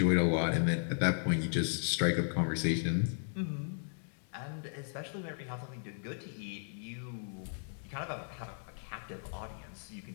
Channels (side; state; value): right; silent; 54 dB below the other